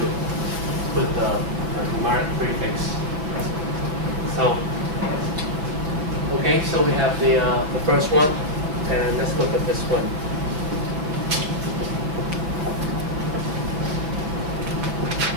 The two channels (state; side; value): late; left; 6.2 ms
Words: put the numeric prefix. So, okay, so we have the first one, and let's look at this one.